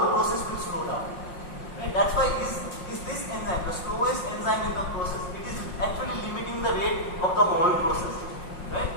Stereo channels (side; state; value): right; late; 5.6 ms